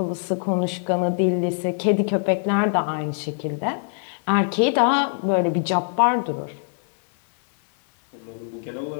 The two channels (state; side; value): silent; right; 63 dB below the other